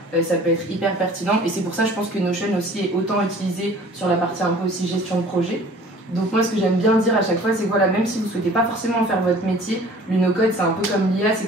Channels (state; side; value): normal; both; correlation 0.49